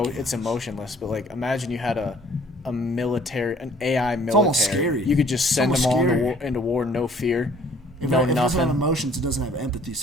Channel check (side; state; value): both; normal; correlation 0.56